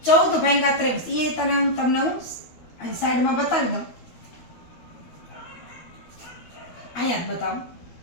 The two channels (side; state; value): right; late; 12 ms